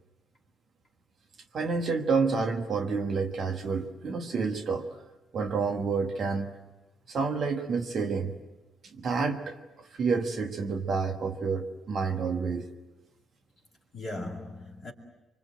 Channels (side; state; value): left; quieter; 4.3 dB